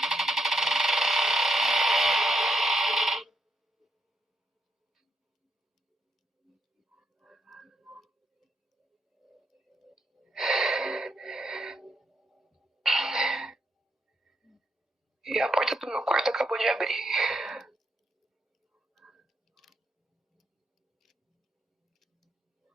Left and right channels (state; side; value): normal; both; correlation 0.79